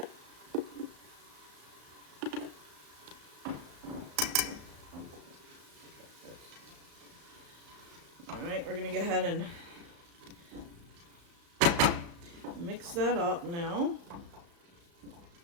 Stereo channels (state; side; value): late; left; 35 ms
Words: All right, we're going to go ahead and mix that up now.